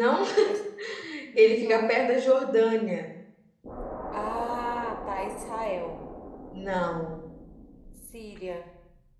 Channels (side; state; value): both; identical; correlation 1.00